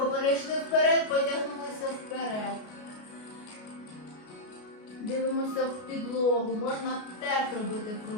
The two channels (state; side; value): late; right; 33 ms